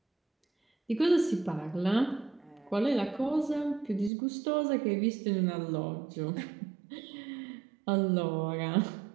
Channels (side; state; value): left; drops out; at 4.1 s